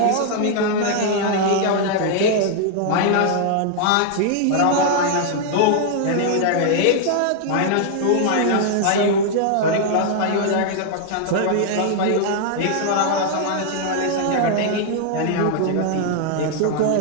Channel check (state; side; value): different; both; correlation 0.00